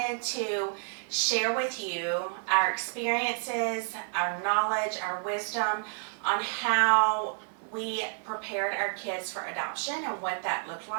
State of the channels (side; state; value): left; silent; 58 dB below the other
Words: to share with you our experiences, our knowledge, our wisdom on how we prepared our kids for adoption and what that looked